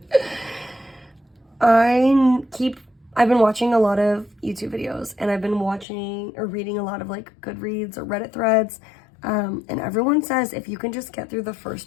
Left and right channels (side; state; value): right; drops out; at 5.9 s